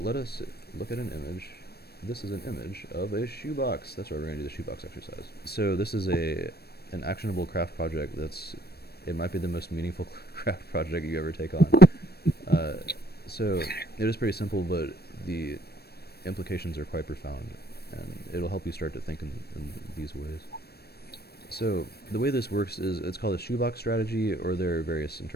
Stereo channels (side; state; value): right; late; 0.47 ms